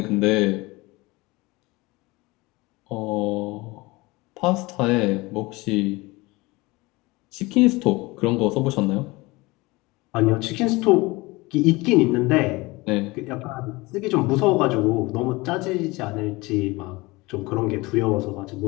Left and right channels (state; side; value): quieter; right; 22.7 dB